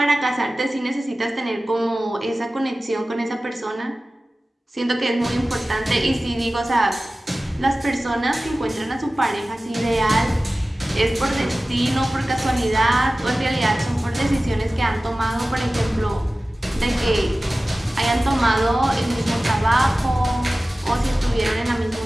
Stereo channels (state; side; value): normal; both; correlation 0.96